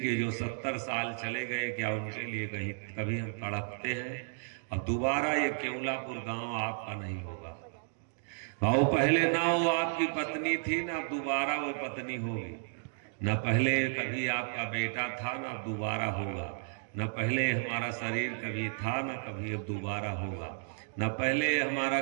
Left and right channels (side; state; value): left; silent; digital silence